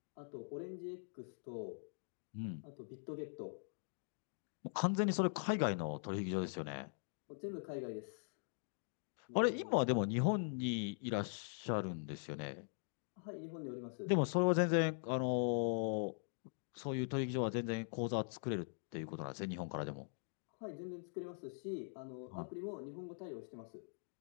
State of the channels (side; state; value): right; silent; digital silence